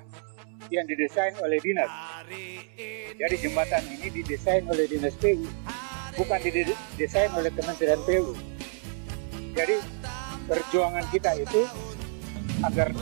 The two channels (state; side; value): silent; left; 59 dB below the other